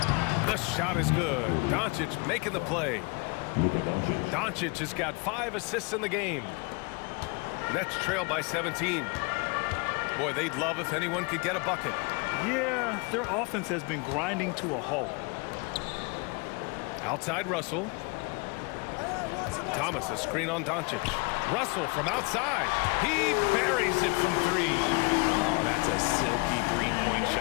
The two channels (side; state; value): right; quieter; 30.4 dB